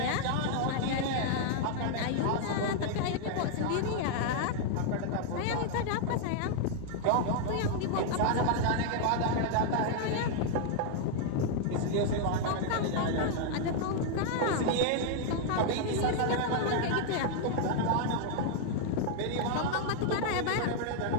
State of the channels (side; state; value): both; different; correlation 0.00